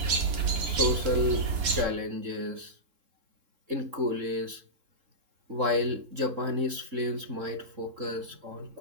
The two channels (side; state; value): left; late; 3.7 ms